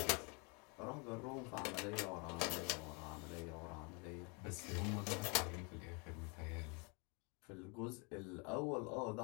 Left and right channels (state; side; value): quieter; right; 33.0 dB